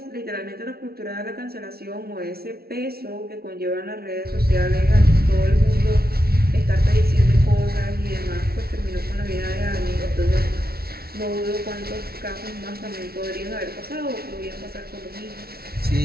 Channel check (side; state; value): left; late; 0.44 ms